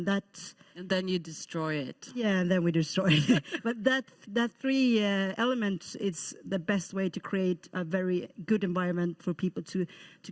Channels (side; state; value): both; identical; correlation 1.00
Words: then you destroy it. Yeah, and then we destroy it. But that three elements is the best way to create a very good environment for people to